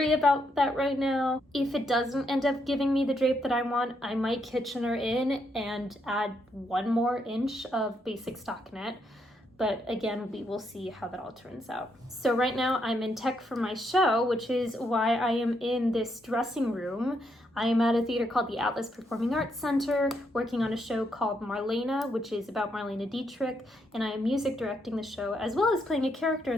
about that right now. If it doesn't end up giving me the drape that I want, I might Kitchener in and add 1 more inch of basic stockinette. But again, we will see how that all turns out. So right now I'm in tech for my show, which is why I am in this dressing room. I am at a theater called the Atlas Performing Arts Center, working on a show called Marlena, which is about Marlena Dietrich, and I am music directing the show as well as playing a character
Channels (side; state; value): both; normal; correlation 0.77